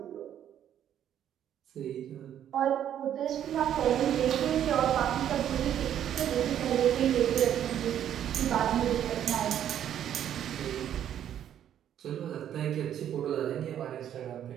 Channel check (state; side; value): quieter; left; 10.3 dB